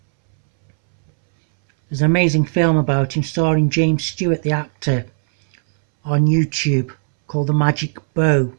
There's an amazing film about him starring James Stewart, the actor, on YouTube called The Magic Bow.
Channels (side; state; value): left; silent; 66 dB below the other